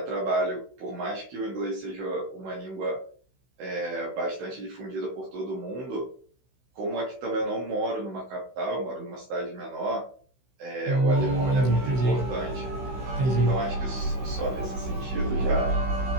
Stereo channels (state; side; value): late; left; 16 ms